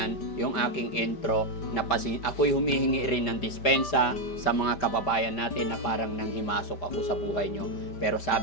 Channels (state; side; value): late; right; 5.1 ms